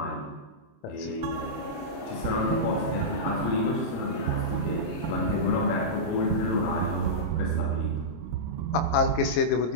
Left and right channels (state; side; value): late; right; 26 ms